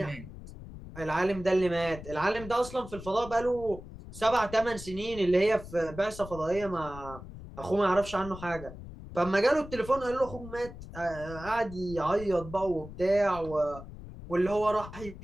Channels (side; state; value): left; noise; rumble, 13 dB below the sound